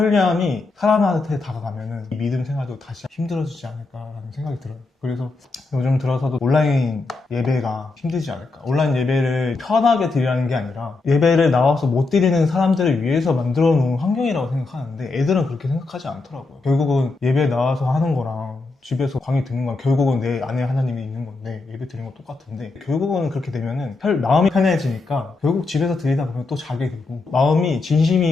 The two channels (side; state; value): right; quieter; 3.6 dB